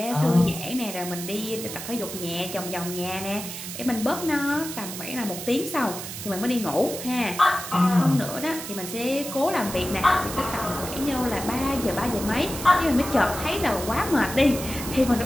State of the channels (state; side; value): noise; right; hiss, 8 dB below the sound